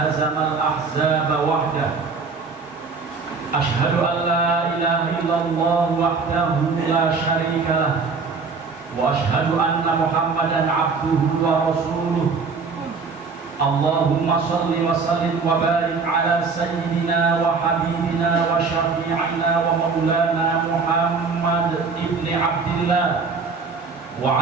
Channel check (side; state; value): left; quieter; 4.8 dB